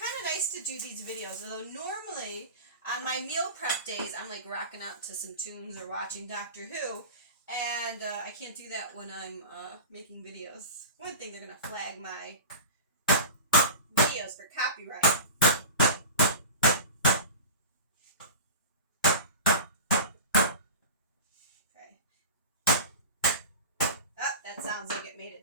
of nice to do these videos. Although normally on my meal prep days, I'm like rocking out to some tunes or watching Doctor Who, and I can't do that when I'm making videos. One thing, they're gonna flag my videos for copyright. Okay. Oh, that sounds like it made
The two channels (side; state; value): both; inverted; correlation -0.31